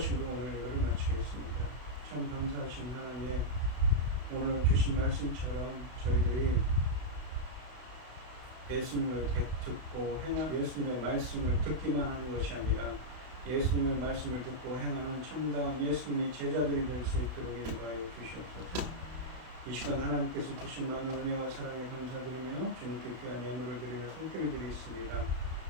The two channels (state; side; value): late; left; 32 ms